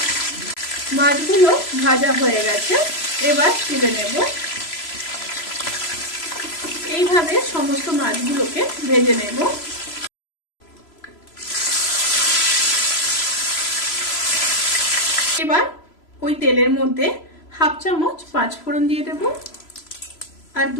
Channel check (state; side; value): late; right; 3.0 ms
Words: মাছগুলো ভাজা হয়ে গেছে। এবার তুলে নেব। এইভাবে সমস্ত মাছগুলোকে ভেজে নেব। এবার ওই তেলের মধ্যে 1/2 চামচ 5 ফোড়ন দিয়ে দেব আর